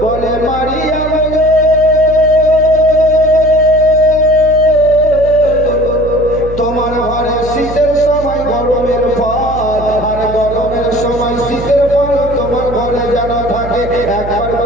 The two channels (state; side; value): noise; right; hum, 10 dB below the sound